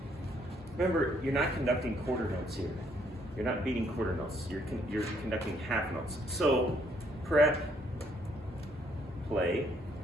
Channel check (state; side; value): normal; both; correlation 0.68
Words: Remember, you're not conducting quarter notes here. You're not beating quarter notes. You're conducting half notes. So, prep, play,